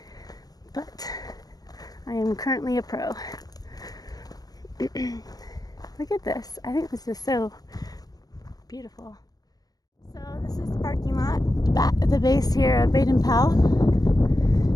But I am currently a pro. Look at this. I think this is so beautiful. So this is the parking lot at the base here of Baden Powell.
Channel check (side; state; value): right; late; 0.18 ms